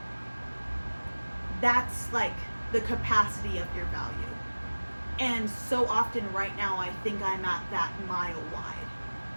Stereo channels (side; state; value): both; inverted; correlation -1.00